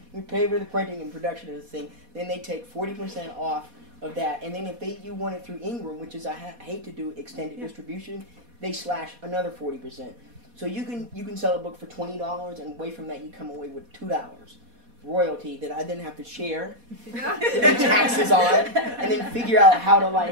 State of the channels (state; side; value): late; left; 4.2 ms